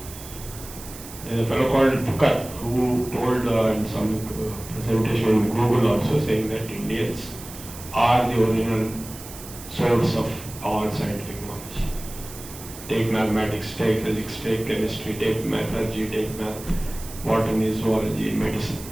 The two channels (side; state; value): right; noise; hiss, 14 dB below the sound